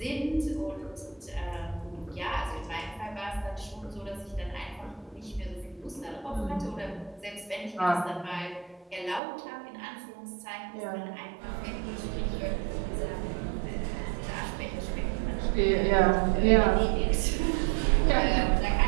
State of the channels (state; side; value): drops out; left; at 9.2 s